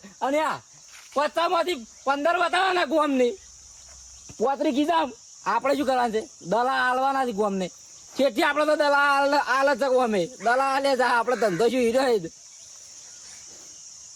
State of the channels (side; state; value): both; identical; correlation 1.00